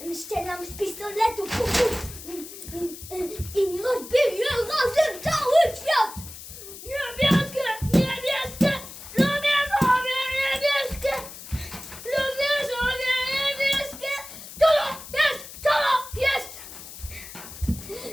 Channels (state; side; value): noise; left; hiss, 14 dB below the sound